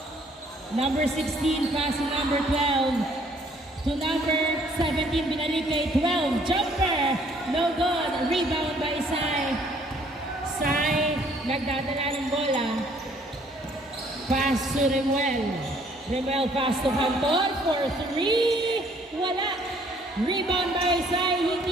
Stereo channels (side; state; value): both; normal; correlation 0.62